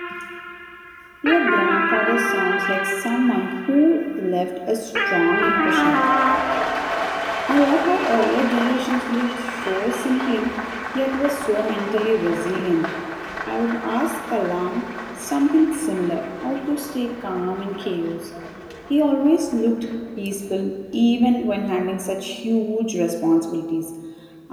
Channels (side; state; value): both; identical; correlation 1.00